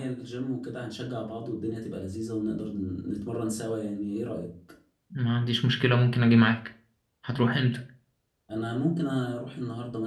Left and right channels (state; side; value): identical; both; correlation 1.00